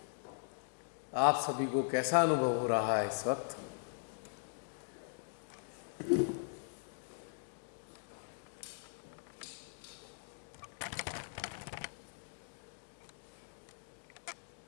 आप सभी को कैसा अनुभव हो रहा है इस वक्त?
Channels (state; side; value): silent; right; digital silence